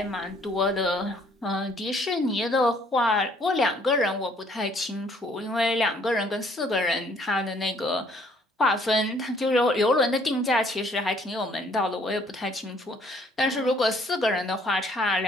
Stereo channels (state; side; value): normal; both; correlation 0.62